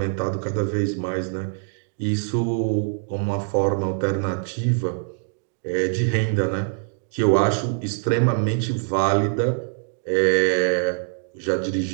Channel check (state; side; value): silent; left; digital silence